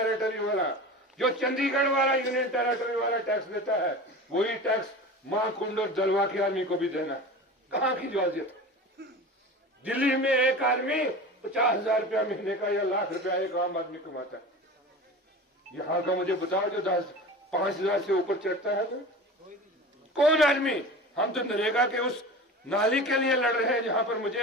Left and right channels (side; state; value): both; normal; correlation 0.33